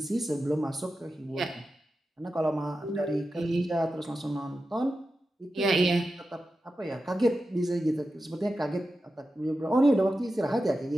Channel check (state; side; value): normal; both; correlation 0.91